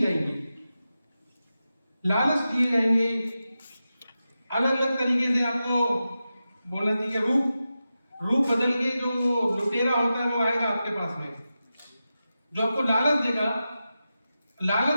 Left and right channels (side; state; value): both; inverted; correlation -0.92